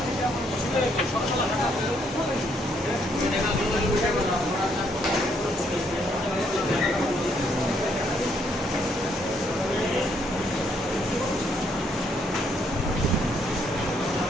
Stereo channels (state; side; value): normal; both; correlation 0.71